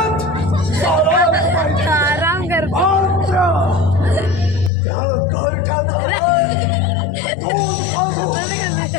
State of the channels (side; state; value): right; drops out; at 4.7 s